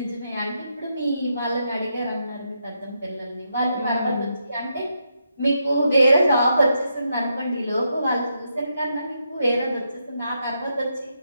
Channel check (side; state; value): both; inverted; correlation -0.82